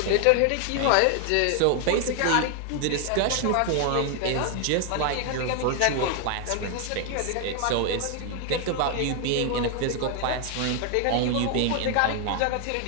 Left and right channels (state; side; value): different; both; correlation 0.00